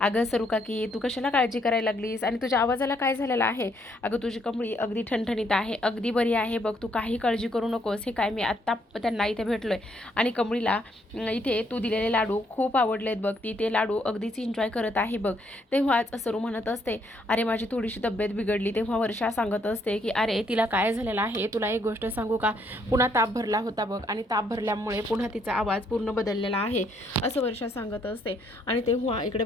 अगं सरू काकी तू कशाला काळजी करायला लागलीस आणि तुझ्या आवाजाला काय झालेलं आहे. अगं तुझी कमळी अगदी ठणठणीत आहे, अगदी बरी आहे बघ, तू काही काळजी करू नकोस. हे काय मी आत्ता त्यांना इथे भेटलोय आणि कमळीला इथे तू दिलेले लाडू खूप आवडलेत बघ, ती ते लाडू अगदीच एन्जॉय करत आहे बघ. तेव्हाच सरू म्हणत असते अरे माझी थोडीशी तब्येत बिघडली. तेव्हा वर्षा सांगत असते की अरे तिला काय झालेलं आहे, तुला एक गोष्ट सांगू का, पुन्हा ताप भरला होता बघ आणि ताप भरल्यामुळे पुन्हा तिचा आवाज पूर्ण बदललेला आहे असं वर्षा सांगत असते. आणि तेव्हा इकडे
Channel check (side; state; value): both; normal; correlation 0.71